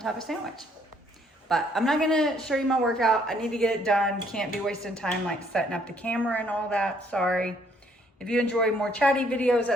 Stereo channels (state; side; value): normal; both; correlation 0.66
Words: of sandwich. But I'm not gonna show you my workout. I need to get it done. Can't be wasting time like setting up the camera and all that, sorry. If you enjoy more chatty videos,